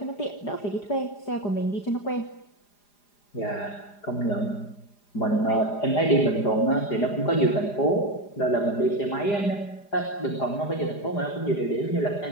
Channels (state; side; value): late; right; 4.9 ms